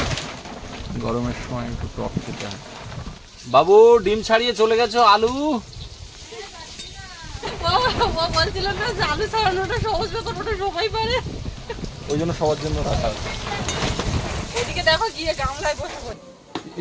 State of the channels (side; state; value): both; identical; correlation 1.00